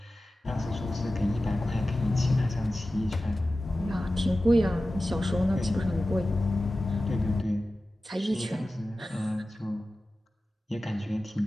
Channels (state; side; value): normal; both; correlation 0.95